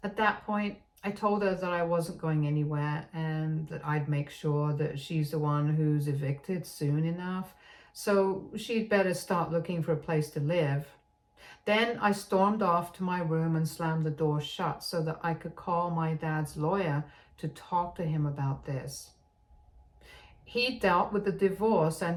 At that point, I told her that I wasn't going anywhere and that I'd make sure that she's the one who's evicted soon enough, so she'd better start looking for a place to live. Then I stormed off to my room and slammed the door shut so that I could call my dad's lawyer to talk to him about this. He dealt with the divorce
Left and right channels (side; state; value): both; identical; correlation 1.00